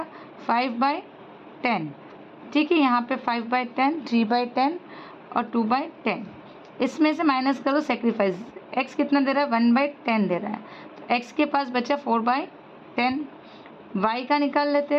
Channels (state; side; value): identical; both; correlation 1.00